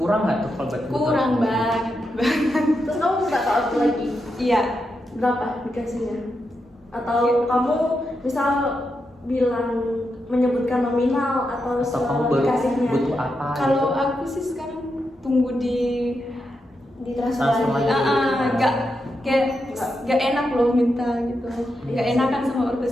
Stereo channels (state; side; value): normal; both; correlation 0.85